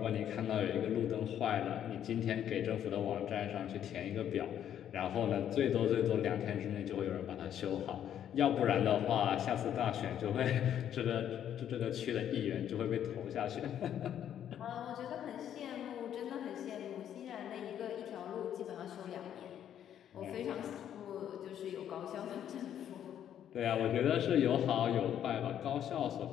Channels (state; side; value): quieter; right; 10.0 dB